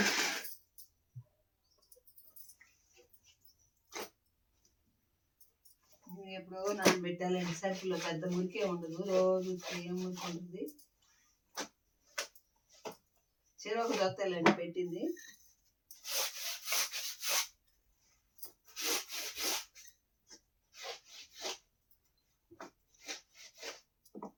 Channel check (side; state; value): both; identical; correlation 1.00